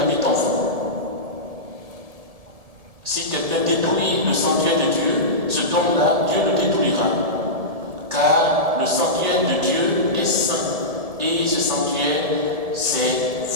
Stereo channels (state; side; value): late; left; 1.7 ms